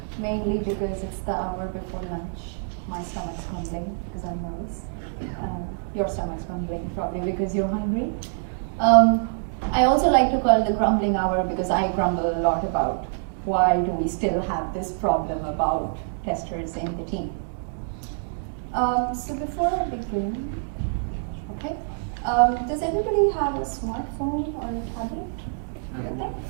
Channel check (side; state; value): left; silent; digital silence